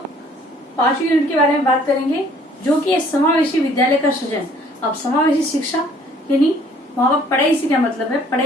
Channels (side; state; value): both; normal; correlation 0.58